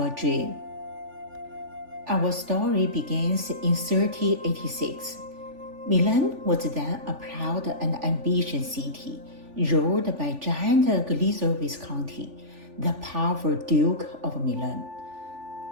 Dream. Our story begins in 1386. Milan was then a proud and ambitious city, ruled by giant Galizio Visconti, the powerful Duke of Milan.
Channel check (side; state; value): left; late; 3.4 ms